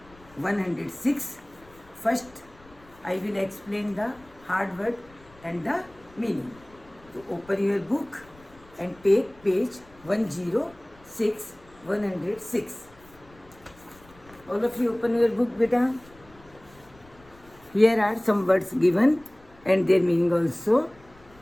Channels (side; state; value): left; noise; rumble, 26 dB below the sound